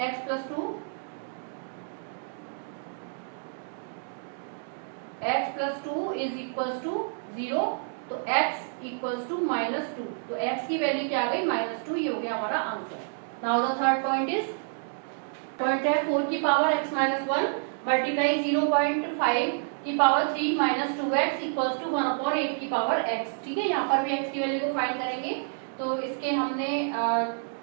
x plus 2 is equals to 0, तो x इक्वल्स टू -2, तो x की वैल्यू क्या आ गई -2, ये हो गया हमारा answer. Now the third point है 4 की पावर x माइनस 1 मल्टीप्लाई 0.5 की power 3 minus 2x equals to 1/8 की पावर x, ठीक है। यहाँ पर भी x की वैल्यू को फाइंड करेंगे, तो इसके हमने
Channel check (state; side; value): silent; left; digital silence